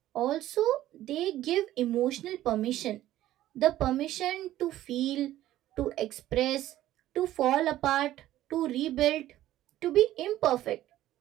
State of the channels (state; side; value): quieter; left; 14.0 dB